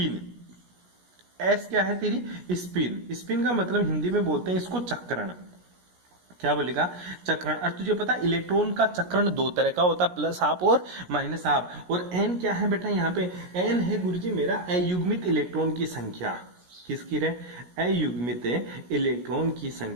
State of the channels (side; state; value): left; late; 17 ms